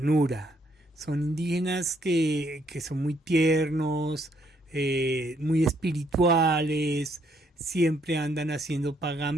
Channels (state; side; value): normal; both; correlation 0.70